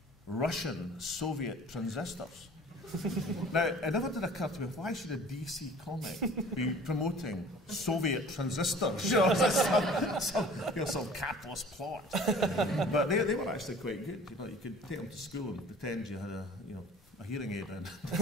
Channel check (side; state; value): both; normal; correlation 0.48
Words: Russian Soviet transistors. Now, it never did occur to me, why should a DC comic be promoting Soviet transistors? You know, some capitalist plot. But they were actually quite good. You know, you could take them to school and pretend you had a hearing aid and